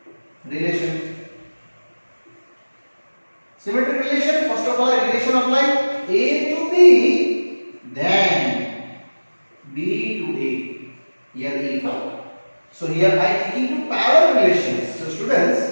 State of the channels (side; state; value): both; inverted; correlation -1.00